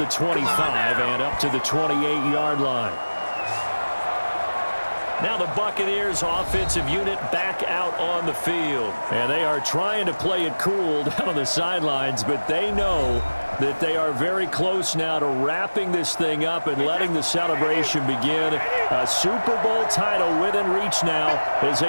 25 and up to the 28-yard line. Now the Buccaneers offensive unit back out on the field. And they are trying to play it cool down on the sidelines, but they know that they are very close now to wrapping this thing up and letting the celebration begin. A Super Bowl title within reach now as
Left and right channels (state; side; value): inverted; both; correlation -1.00